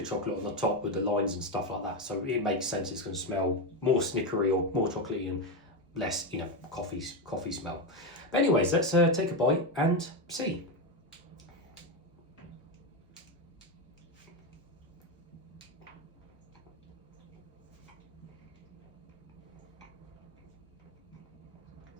chocolate on the top with the lines and stuff like that. So it makes sense it's going to smell more snickery or more chocolatey and less, coffee smell. But anyways, let's take a bite and see.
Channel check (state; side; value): normal; both; correlation 0.11